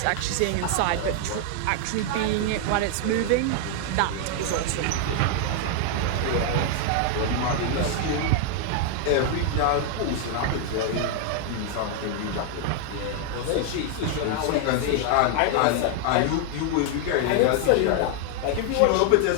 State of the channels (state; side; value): different; both; correlation 0.00